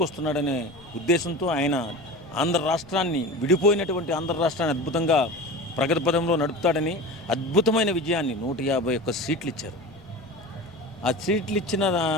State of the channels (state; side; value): noise; left; rumble, 25 dB below the sound